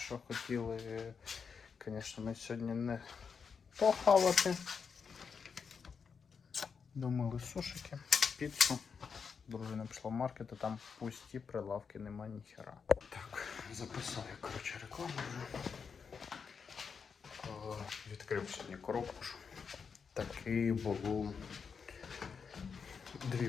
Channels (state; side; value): quieter; right; 6.0 dB